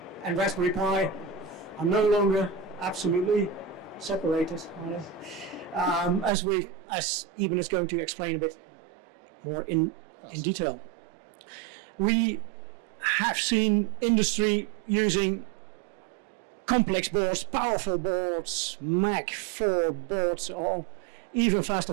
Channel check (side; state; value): left; drops out; at 6.3 s